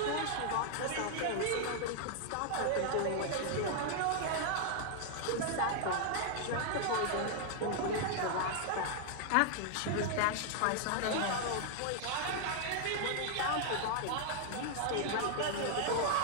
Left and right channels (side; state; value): both; different; correlation 0.00